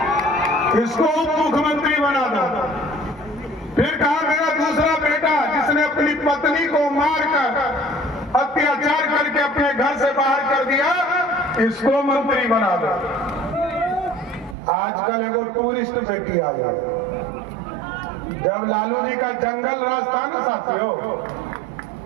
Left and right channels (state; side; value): drops out; left; at 14.6 s